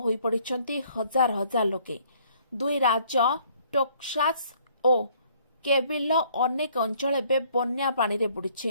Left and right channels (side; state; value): both; inverted; correlation -0.61